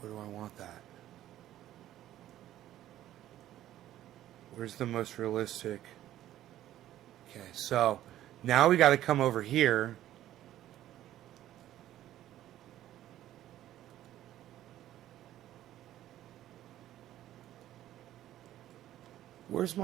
Where do I want that? Where's the most realistic? Okay, so now we got to come over here. Where's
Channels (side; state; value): left; quieter; 13.1 dB